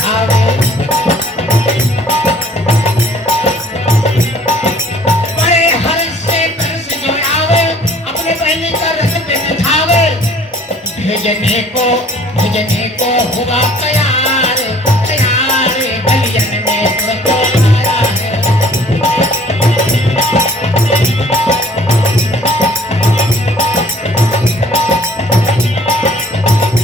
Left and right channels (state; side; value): normal; both; correlation 0.54